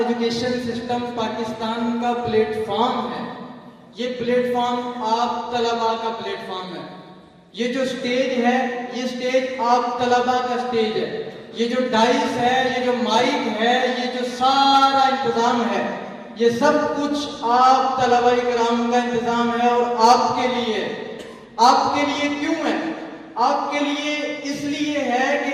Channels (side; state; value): both; identical; correlation 1.00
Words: سسٹم پاکستان کا پلیٹ فارم ہے یہ پلیٹ فارم آپ طلباء کا پلیٹ فارم ہے. یہ جو سٹیج ہے یہ سٹیج آپ طلباء کا سٹیج ہے. یہ جو ڈائس ہے یہ جو مائک ہے یہ جو سارا انتظام ہے یہ سب کچھ آپ طلباء کرام کا انتظام ہے اور آپ کے لیے. آپ کے لیے کیوں ہے؟ آپ کے لیے اس لیے ہے